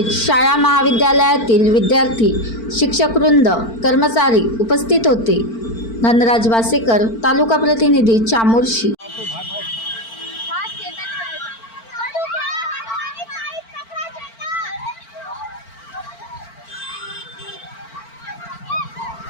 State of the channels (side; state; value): right; late; 4.4 ms